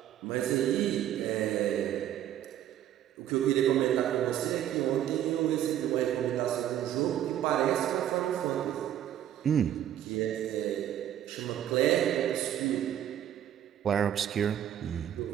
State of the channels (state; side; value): quieter; left; 11.2 dB